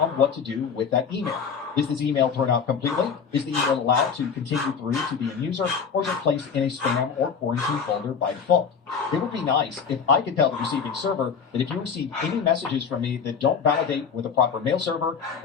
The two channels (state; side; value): quieter; right; 6.3 dB